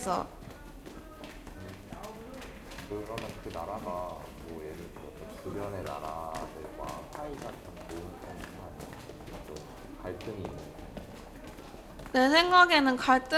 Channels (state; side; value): identical; both; correlation 1.00